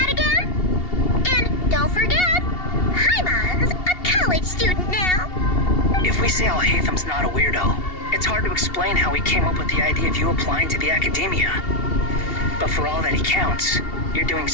again? And don't forget, Paimon's a college student now. If we say Al-Haytham's not a weirdo, it's hard to explain how he came up with the idea of you applying to the academia. But for all that he counts, you're doing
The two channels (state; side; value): late; right; 2.7 ms